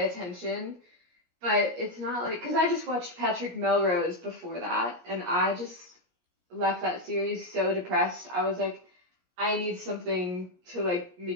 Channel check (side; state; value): left; late; 17 ms